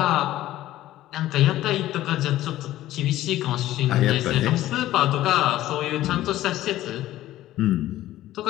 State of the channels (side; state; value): right; quieter; 14.6 dB